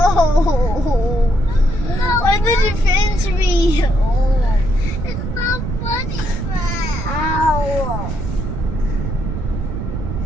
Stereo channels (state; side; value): noise; right; rumble, 4 dB below the sound